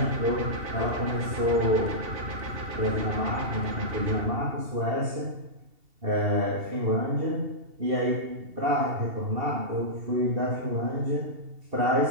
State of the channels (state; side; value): late; left; 2.7 ms